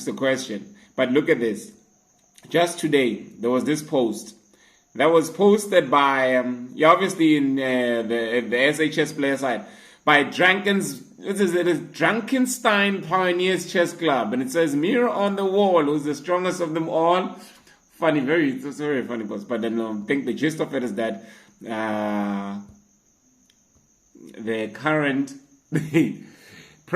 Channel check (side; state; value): both; identical; correlation 1.00